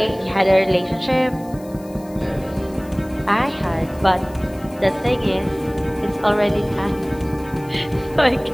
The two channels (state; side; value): noise; left; hiss, 24 dB below the sound